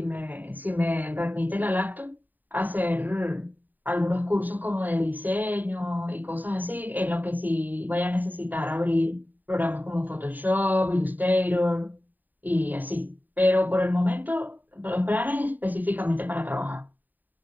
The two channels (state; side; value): late; left; 0.087 ms